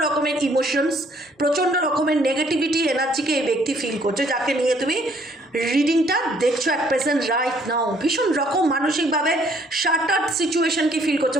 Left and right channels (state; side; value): normal; both; correlation 0.64